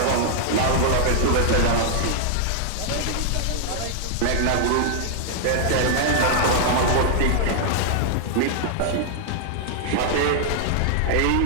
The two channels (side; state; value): both; different; correlation -0.01